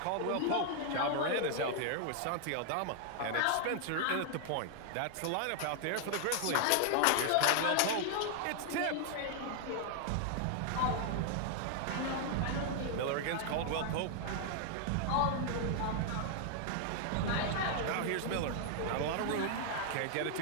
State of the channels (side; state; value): both; different; correlation 0.00